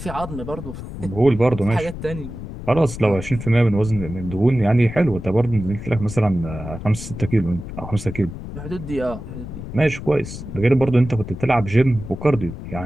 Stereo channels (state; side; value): noise; left; rumble, 10 dB below the sound